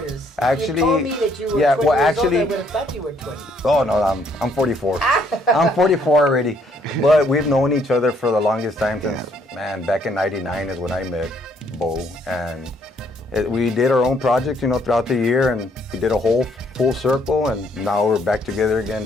Actually, you told me that you were yeah, 20 well, years actually- old. I would have thought you were 20. Oh no, I'm 44. I'm 44 already. But we've known each other for the longest time since, back in '99 is when I met Bo, and we did our own projects, throughout the year, and we did a whole full circle, and now we're back together again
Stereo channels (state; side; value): normal; both; correlation 0.67